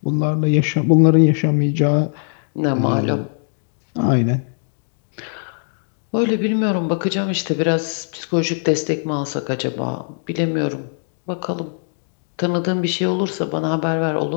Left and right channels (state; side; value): silent; right; 65 dB below the other